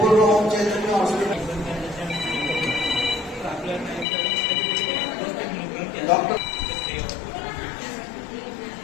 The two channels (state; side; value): drops out; right; at 4.0 s